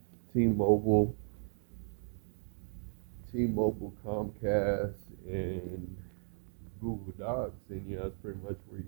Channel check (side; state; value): left; silent; digital silence